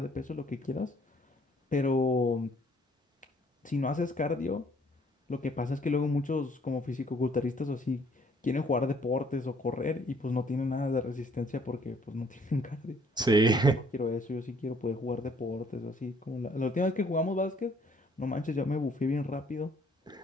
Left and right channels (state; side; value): normal; both; correlation 0.62